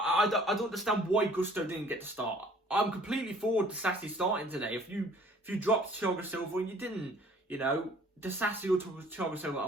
don't understand why Gusto didn't get to start. I'm completely forward to Sassy starting today. If you dropped Thiago Silva and you didn't, Disasi or Thiago Silva, I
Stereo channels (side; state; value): both; normal; correlation 0.54